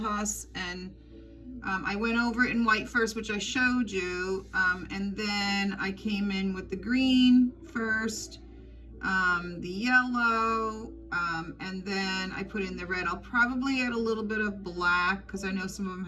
and I went over it in white first, which I showed you, and then I came in with the green first, the yellow, and then I put in the red. I'll probably add a little bit of black because I know some of them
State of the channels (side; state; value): both; identical; correlation 1.00